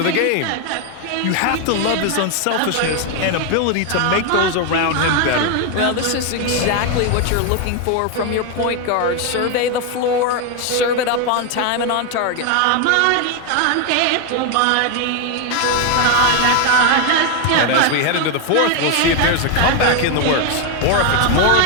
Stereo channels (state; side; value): different; both; correlation 0.01